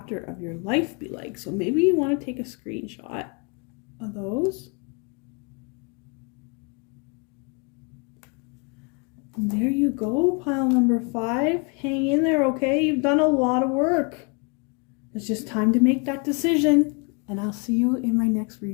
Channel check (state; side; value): quieter; right; 33.2 dB